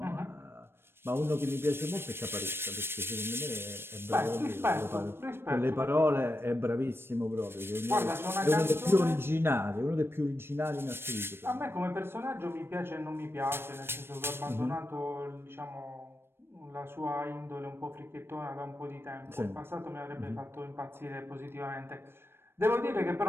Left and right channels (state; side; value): late; left; 0.11 ms